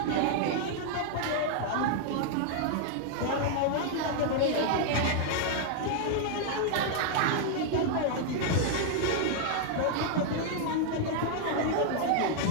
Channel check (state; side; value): different; both; correlation 0.00